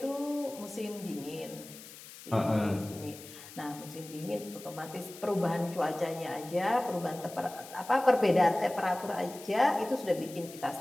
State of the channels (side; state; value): left; noise; hiss, 16 dB below the sound